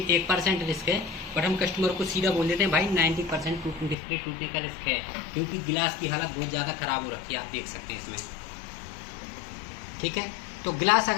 1% रिस्क है, बट हम कस्टमर को सीधा बोल देते हैं भाई 90% डिस्प्ले टूटने का रिस्क है, क्योंकि गिलास की हालत बहुत ज़्यादा ख़राब हो रखी है, आप देख सकते हैं इसमें, ठीक है। तो गिलास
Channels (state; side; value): drops out; right; at 4.0 s